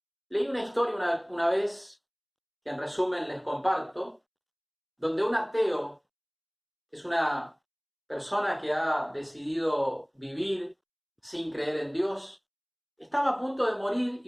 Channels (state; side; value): identical; both; correlation 1.00